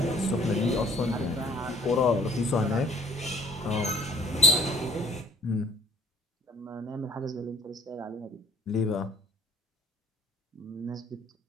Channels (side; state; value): both; normal; correlation 0.53